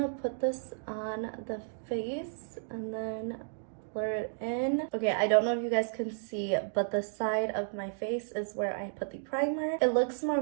put this on the face and then blur it in. Okay, I don't know if you guys can see, but the side of my face is where I put the primer. It looks more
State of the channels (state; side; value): silent; left; digital silence